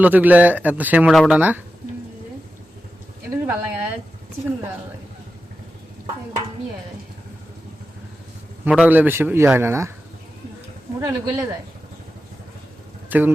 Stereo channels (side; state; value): both; normal; correlation 0.91